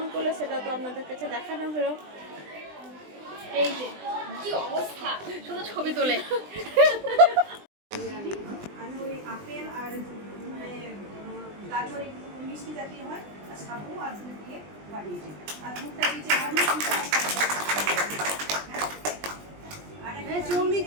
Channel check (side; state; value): left; late; 20 ms